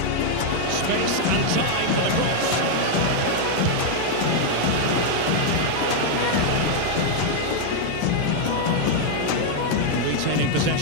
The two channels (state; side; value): different; both; correlation -0.01